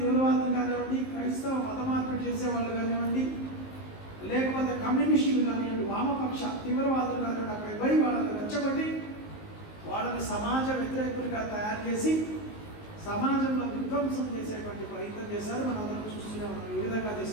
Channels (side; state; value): right; late; 19 ms